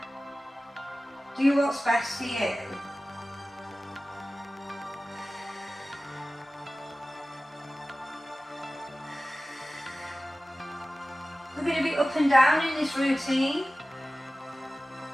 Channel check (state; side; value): normal; both; correlation 0.96